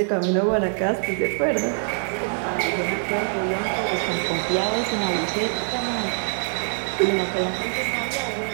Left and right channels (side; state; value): left; silent; 63 dB below the other